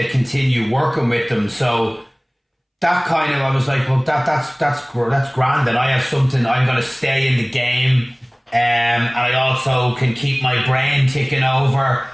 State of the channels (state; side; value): identical; both; correlation 1.00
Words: continue working with them. So that kind of, I was like, well, that's grand, and I have something, I'm going to stay in the game, and I also can keep my brain ticking over,